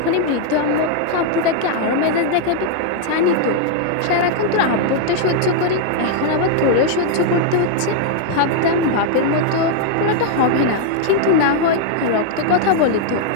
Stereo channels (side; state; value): both; different; correlation 0.00